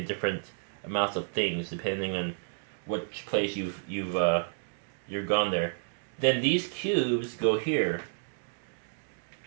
different amounts of things depending on which place you've gone there. Then these cubes go here,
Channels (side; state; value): left; silent; digital silence